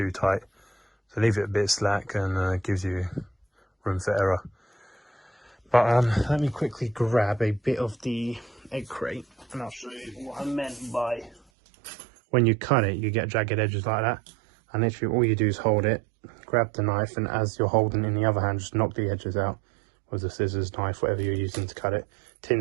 tight. So leave it a bit slack, and gives you room for error. But let me quickly grab a bit of the egg crate, and I'll show you what I meant by when you cut it, you get jagged edges like that. And literally all you do is hold it, grab the knife, and as you're holding it in the other hand, just knock the edges out with the scissors, knife, whatever you're using to cut it.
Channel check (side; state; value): left; drops out; at 11.4 s